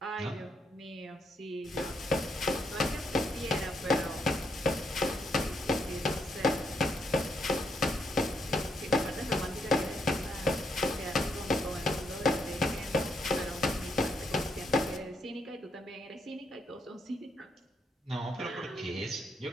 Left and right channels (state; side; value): normal; both; correlation 0.76